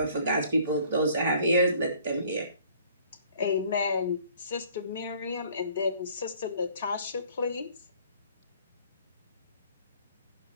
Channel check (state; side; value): inverted; both; correlation -0.56